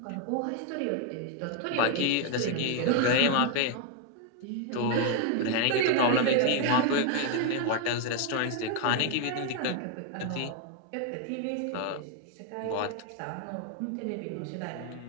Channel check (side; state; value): both; different; correlation 0.00